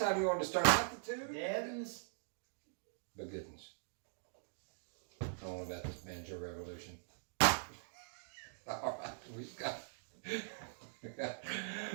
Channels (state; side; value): silent; left; digital silence